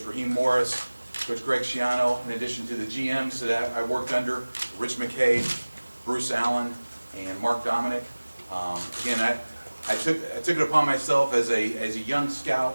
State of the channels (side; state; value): both; inverted; correlation -1.00